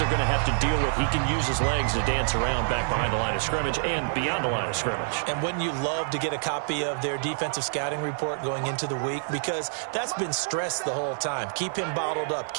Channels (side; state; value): left; silent; 60 dB below the other